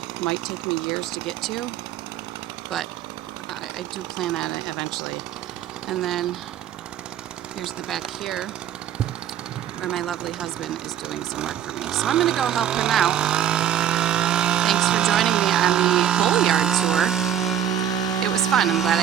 Might take me years to get to, but I do plan on it eventually. And then here's the back here where my lovely husband is doing some work for me. So I'm going to go help him out. Thanks for joining me on the whole yard tour. It was fun. I'm glad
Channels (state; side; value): quieter; left; 9.8 dB